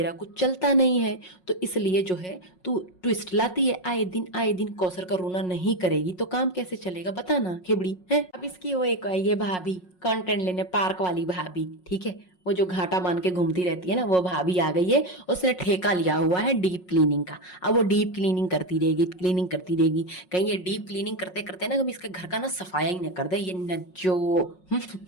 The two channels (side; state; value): right; late; 5.5 ms